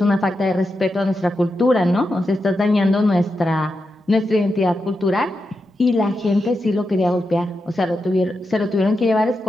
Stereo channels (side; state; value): both; normal; correlation 0.88